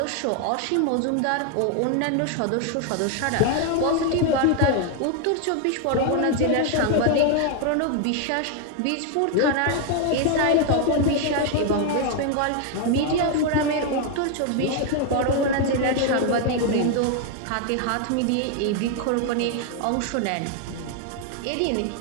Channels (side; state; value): both; different; correlation 0.00